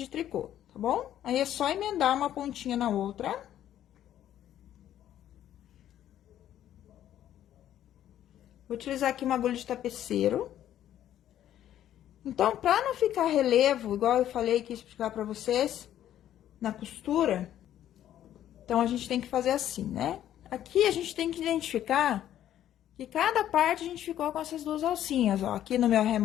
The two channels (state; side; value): quieter; right; 11.5 dB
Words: tricô, tá bom? Aí, é só emendar uma pontinha na outra. Vou utilizar aqui uma agulha de tapeceiro. Então, pra não ficar relevo, igual eu falei que ia explicar pra vocês, na costura, então, a gente tem que fazer assim, né? Aqui, a gente tem que identificar que cada parte a gente ficou com essas duas alcinhas, ó. Aqui no meu